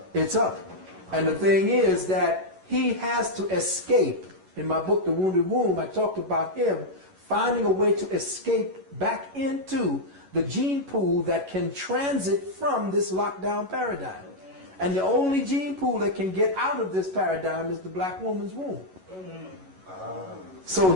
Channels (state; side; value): late; left; 11 ms